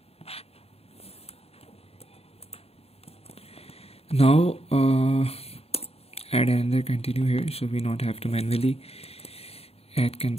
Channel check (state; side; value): late; right; 0.29 ms